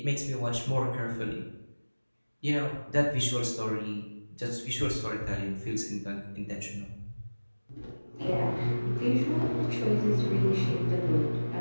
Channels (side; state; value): both; inverted; correlation -1.00